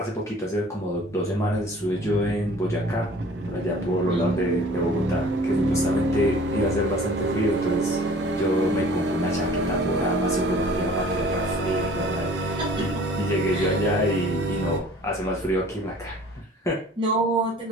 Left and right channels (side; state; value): both; normal; correlation 0.49